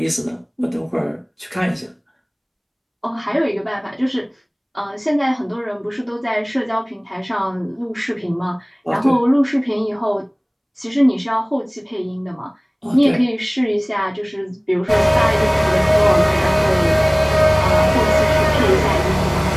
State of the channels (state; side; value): identical; both; correlation 1.00